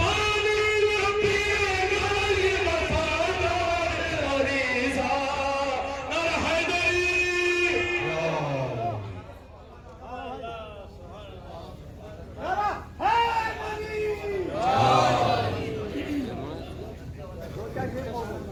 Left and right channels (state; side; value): identical; both; correlation 1.00